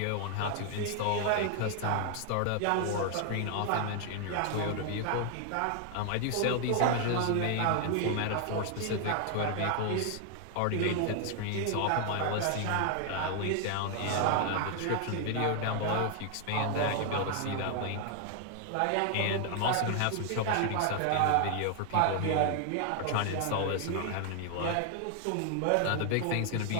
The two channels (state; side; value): different; both; correlation 0.00